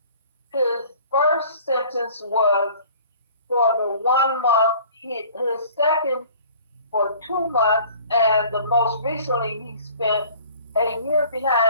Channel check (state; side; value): inverted; both; correlation -0.50